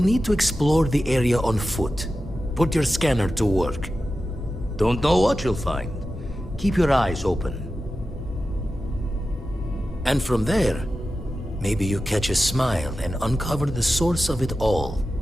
to explore the area on foot. Put your scanner to work. Don't know what you'll find. Keep your eyes open. And from there, maybe you catch a smile and uncover the source of it all.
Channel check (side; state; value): both; normal; correlation 0.93